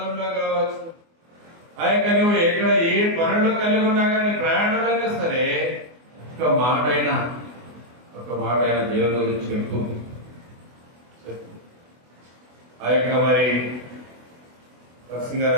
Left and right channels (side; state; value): left; late; 24 ms